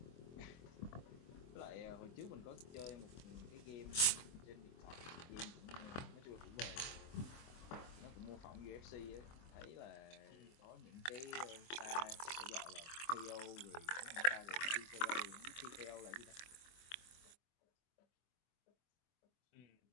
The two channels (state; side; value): late; right; 24 ms